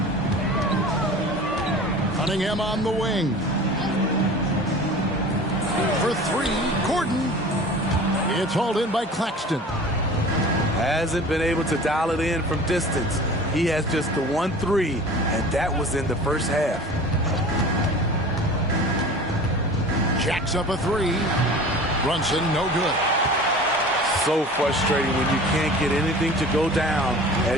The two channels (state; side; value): normal; both; correlation 0.40